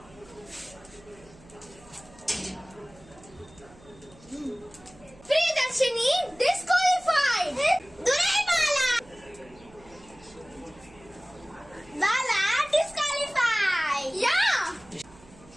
Priyadarshini disqualified. Durai Bala. Bala disqualified. Yeah.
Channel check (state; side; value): noise; right; hum, 24 dB below the sound